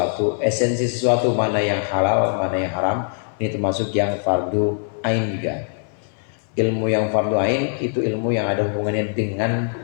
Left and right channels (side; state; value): right; silent; 59 dB below the other